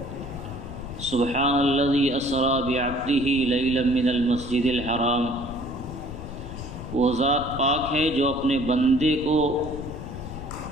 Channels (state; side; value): noise; left; rumble, 10 dB below the sound